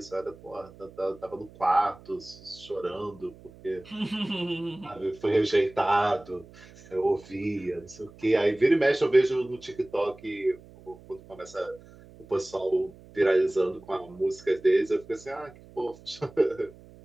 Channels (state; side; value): noise; right; hum, 22 dB below the sound